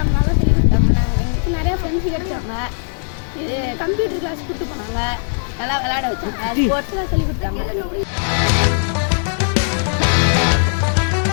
நல்லா சொல்லி கொடுத்தாங்க. எங்களுக்கு நிறைய ஃப்ரெண்ட்ஸ் கிடைச்சாங்க. கம்ப்யூட்டர் கிளாஸ் கூப்பிட்டு போனாங்க, நல்லா விளையாட வச்சாங்க, ஸ்போர்ட்ஸ்லாம் சொல்லி கொடுத்தாங்க.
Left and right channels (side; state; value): right; silent; digital silence